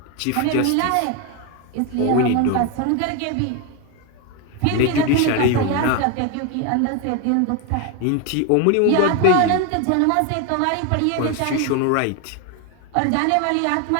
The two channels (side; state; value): both; different; correlation 0.01